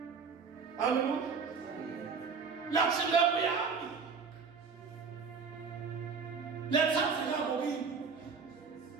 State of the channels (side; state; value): left; quieter; 5.4 dB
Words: haleluya lathi lepo yami lethatheka kokini